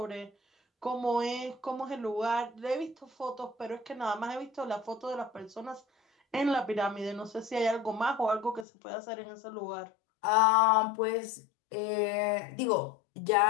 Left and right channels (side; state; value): right; drops out; at 8.7 s